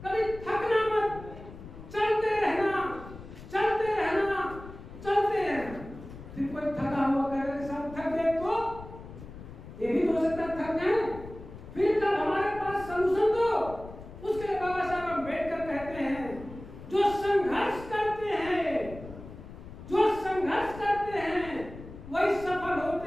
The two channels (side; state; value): left; noise; rumble, 14 dB below the sound